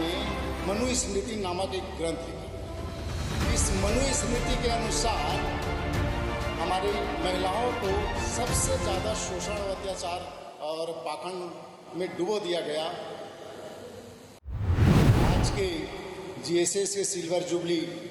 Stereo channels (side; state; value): both; identical; correlation 1.00